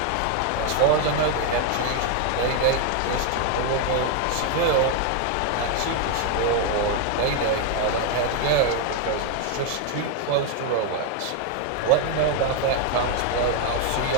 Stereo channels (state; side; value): different; both; correlation 0.01